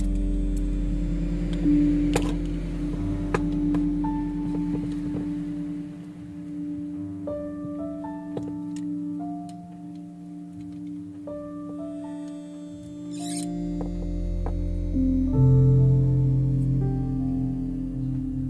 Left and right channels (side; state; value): both; identical; correlation 1.00